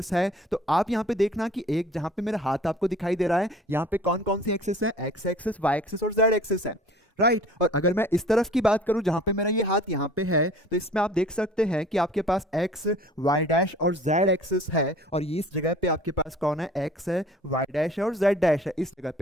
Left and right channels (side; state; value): both; normal; correlation 0.48